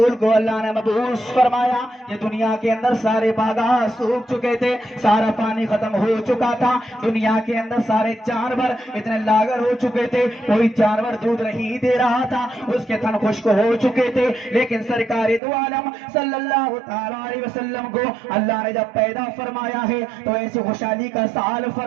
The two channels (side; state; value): left; drops out; at 15.4 s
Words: کو اللہ نے مبعوث فرمایا یہ دنیا کے اندر سارے باغات سوکھ چکے تھے. سارا پانی ختم ہو چکا تھا. دنیا کے اندر سارے جانور اتنے لاغر ہو چکے تھے. کوئی جانور دودھ نہیں دے رہا تھا. اس کے تھن خشک ہو چکے تھے. لیکن سرکار دو عالم صلی اللہ تعالی علیہ وسلم کو اللہ نے جب پیدا فرمایا ہے تو ایسی خوشحالی کا سال